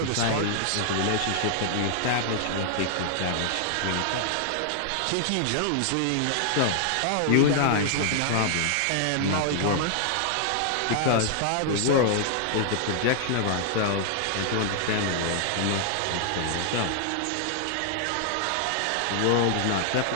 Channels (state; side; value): different; both; correlation 0.00